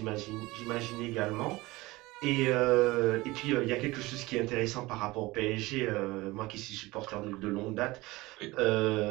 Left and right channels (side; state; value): left; quieter; 20.7 dB